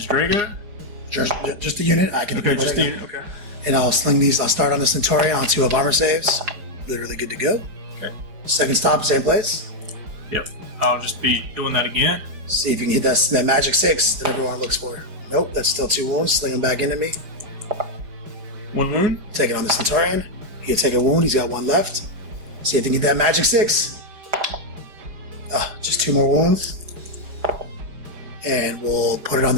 Drago. Just the unit. I can Okay, just the unit, okay. And I'll sling these. I'll start on the Centaurion on 2 of armor saves. Literally good to go. Okay. Second stop, same place. Yep. I'll just be doing that again. See if you can hit that magic 6 that everyone looks for. Nope, that's still 2 wounds. Sling them back into me. 1 wound. Take it on the Centaurion. He can take a wound. He's got 1 left. See if you can get that magic 6. Just 2 more wounds. And we'll put it on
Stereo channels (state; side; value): late; left; 4.8 ms